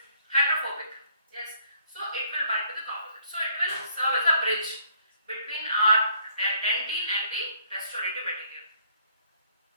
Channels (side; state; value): both; inverted; correlation -0.65